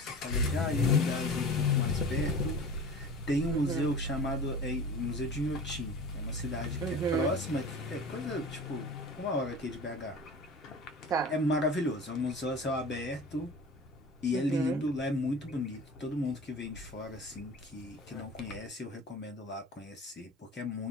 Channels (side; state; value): both; normal; correlation 0.37